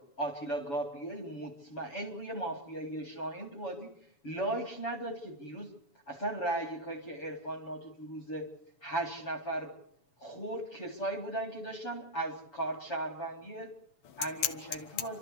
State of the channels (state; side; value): late; right; 7.1 ms